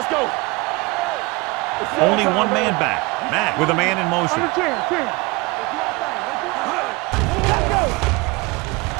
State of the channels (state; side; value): quieter; left; 24.9 dB